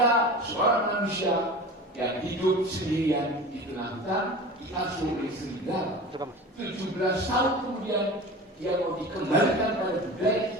seorang manusia yang hidup sendirian di tengah hutan, diasuh oleh serigala. 17 tahun kemudian dia mau dikembalikan pada budaya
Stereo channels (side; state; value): both; normal; correlation 0.34